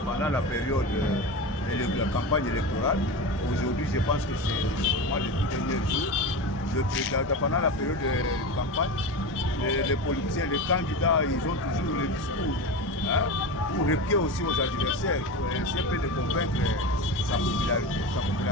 pendant la période de la campagne électorale. Aujourd'hui, je pense que c'est moi le tout dernier jour. Pendant la période de campagne, les politiciens, les candidats, ils ont toujours le discours, hein, pour répliquer aussi aux adversaires, pour essayer de convaincre sa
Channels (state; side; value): normal; both; correlation 0.24